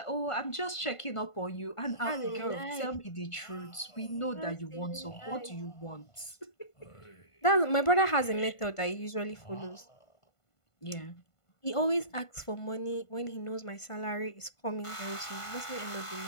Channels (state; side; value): late; right; 1.5 ms